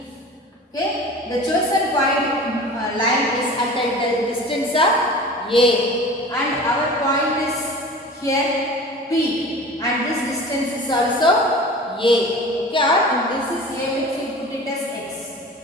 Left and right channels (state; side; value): normal; both; correlation 0.38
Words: Okay, the chosen point line is at the distance of A, and our point is here P, and this distance is also A. Okay, and this is A, which we put it as X.